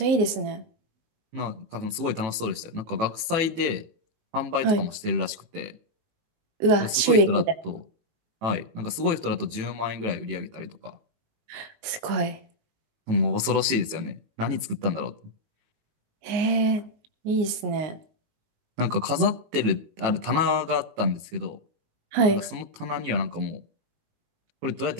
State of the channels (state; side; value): late; left; 18 ms